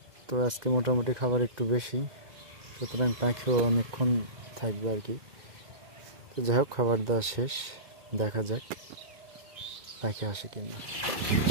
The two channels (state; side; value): late; left; 1.9 ms